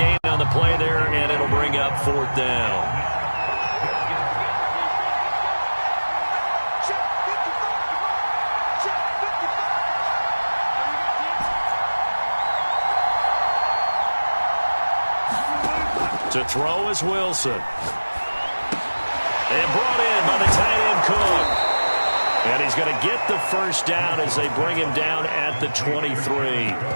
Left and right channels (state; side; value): inverted; both; correlation -1.00